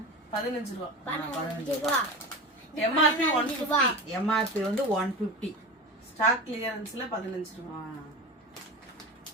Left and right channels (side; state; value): both; normal; correlation 0.27